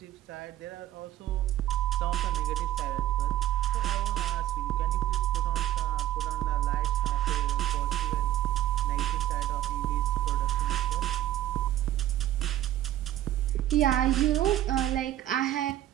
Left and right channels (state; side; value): quieter; left; 13.1 dB